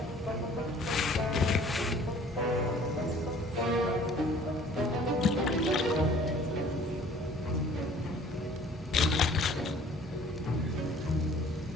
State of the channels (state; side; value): normal; both; correlation 0.52